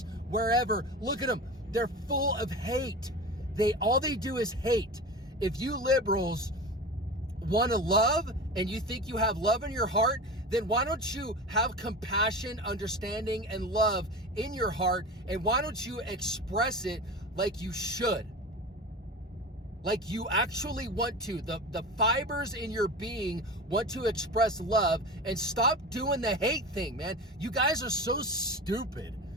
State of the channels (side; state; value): both; normal; correlation 0.30